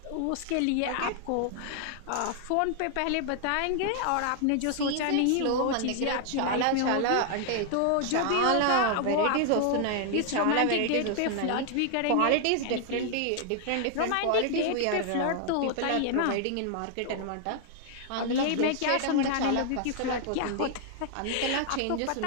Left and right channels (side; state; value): both; different; correlation 0.00